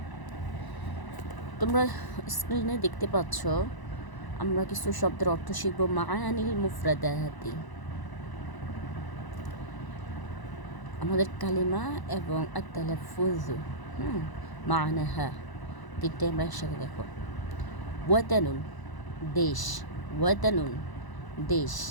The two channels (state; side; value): late; right; 1.0 ms